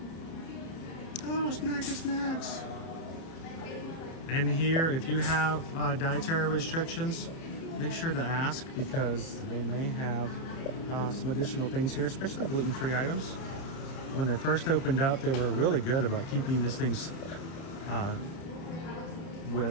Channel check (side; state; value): right; late; 30 ms